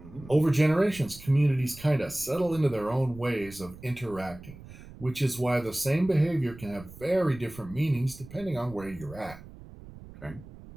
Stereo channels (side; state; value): right; noise; rumble, 17 dB below the sound